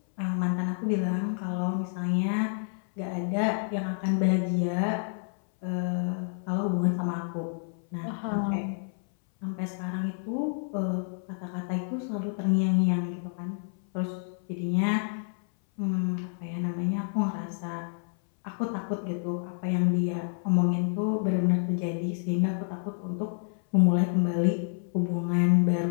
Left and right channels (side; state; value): right; silent; 59 dB below the other